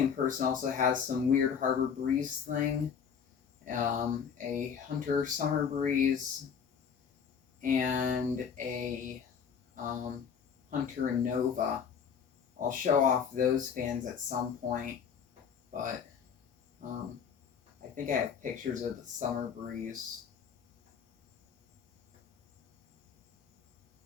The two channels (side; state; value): right; quieter; 7.1 dB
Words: person also has some weird Harbor Breeze thing, a Hunter Summer Breeze, and a Hunter Nova. I'll show off those fans at some point, but I think I have pictures of the Summer Breeze.